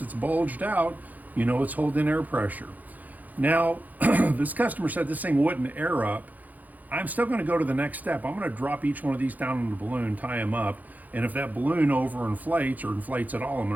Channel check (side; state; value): left; late; 0.081 ms